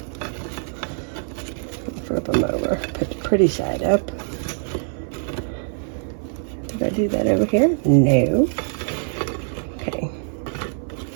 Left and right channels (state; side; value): silent; left; 57 dB below the other